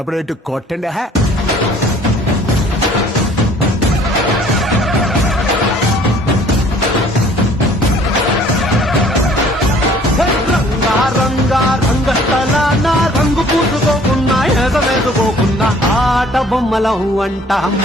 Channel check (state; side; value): normal; both; correlation 0.55